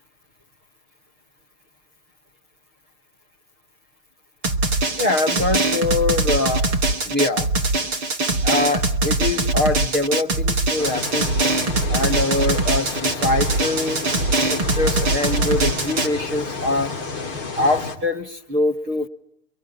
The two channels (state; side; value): late; left; 6.5 ms